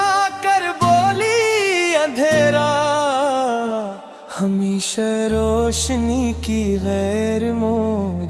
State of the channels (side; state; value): both; identical; correlation 1.00